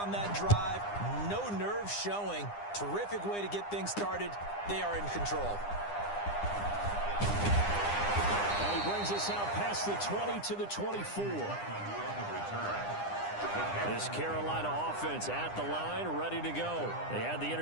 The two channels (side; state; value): right; late; 9.9 ms